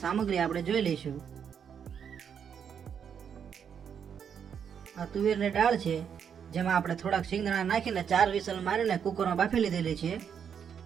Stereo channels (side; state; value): left; quieter; 7.7 dB